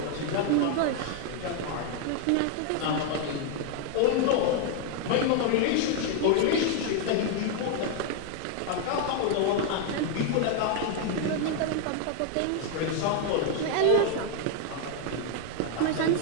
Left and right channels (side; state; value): both; different; correlation 0.00